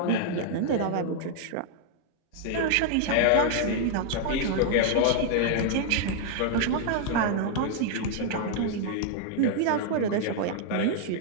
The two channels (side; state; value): both; different; correlation -0.01